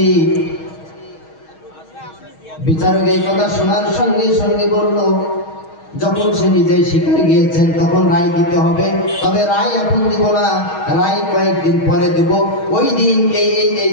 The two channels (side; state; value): right; late; 6.3 ms